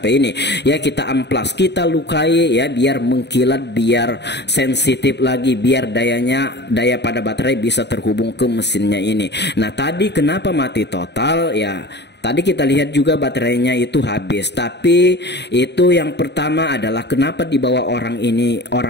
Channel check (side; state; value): right; late; 0.50 ms